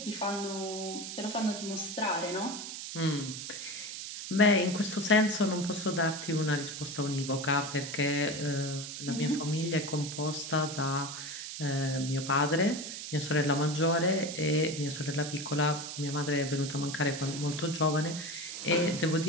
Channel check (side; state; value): right; noise; hiss, 8 dB below the sound